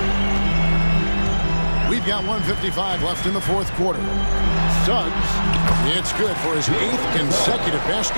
We've got 1:55 left in the fourth quarter. Suggs, it's good for his 8th consecutive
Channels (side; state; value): both; inverted; correlation -1.00